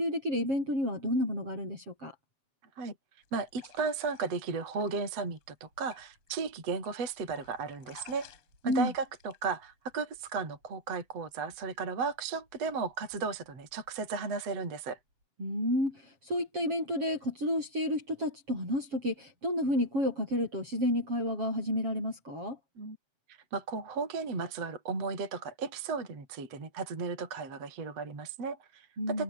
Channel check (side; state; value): left; late; 8.0 ms